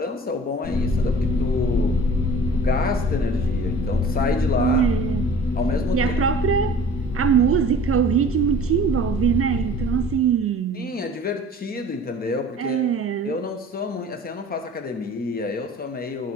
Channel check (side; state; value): both; normal; correlation 0.45